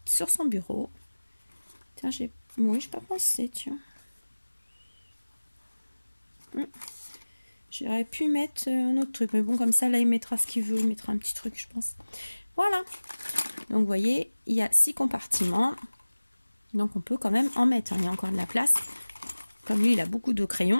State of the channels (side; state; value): both; inverted; correlation -1.00